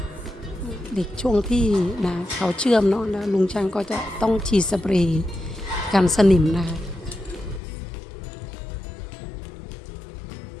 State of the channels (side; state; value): right; drops out; at 7.6 s